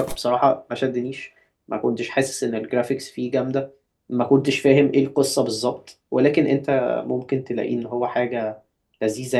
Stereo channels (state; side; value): identical; both; correlation 1.00